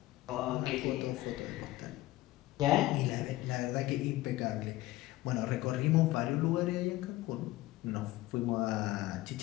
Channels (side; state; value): right; quieter; 17.2 dB